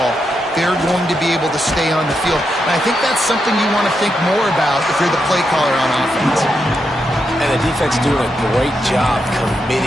they're going to be able to stay on the field. And I think that's something you want to think more about if you're the play caller on offense. And the defense doing a great job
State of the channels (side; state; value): both; normal; correlation 0.84